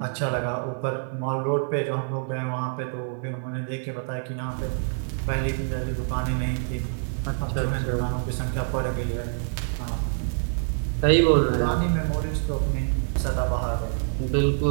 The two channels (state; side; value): silent; left; digital silence